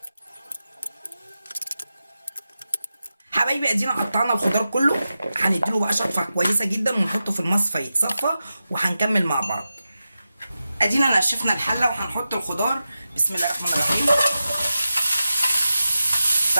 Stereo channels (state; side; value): inverted; both; correlation -0.92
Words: حبايبي ادينا قطعنا الخضار كله، هنديله بقى شطفه كويسه جدا ونحطه في المصفى يتصفى، وهنكمل مع بعض. ادينا نشفنا الحله وهنحط الخضار. بسم الله الرحمن الرحيم.